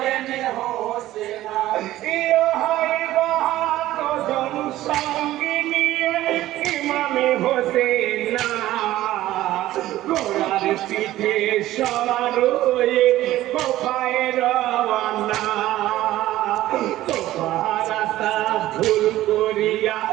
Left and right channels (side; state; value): left; quieter; 15.0 dB